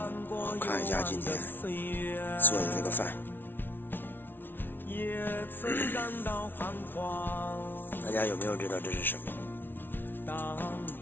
我看一下今天做的这个饭，大家有没有知道这是什么？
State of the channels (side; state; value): right; late; 0.10 ms